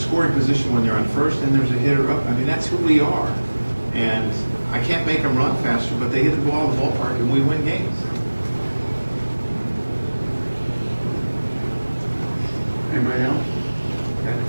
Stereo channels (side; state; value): both; inverted; correlation -1.00